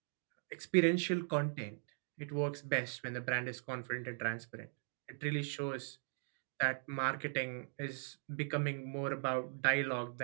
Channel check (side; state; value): left; silent; 51 dB below the other